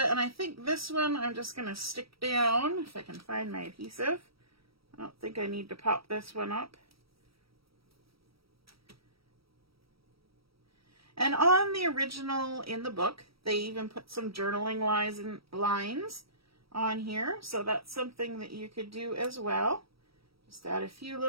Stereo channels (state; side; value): late; left; 0.76 ms